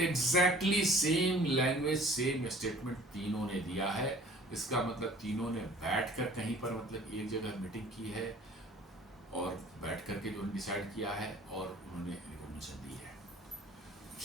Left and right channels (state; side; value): normal; both; correlation 0.50